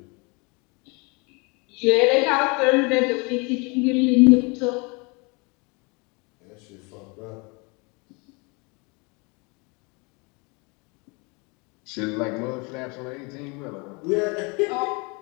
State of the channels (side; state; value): right; quieter; 29.8 dB